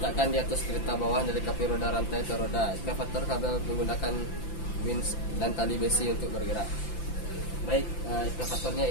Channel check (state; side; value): late; right; 5.9 ms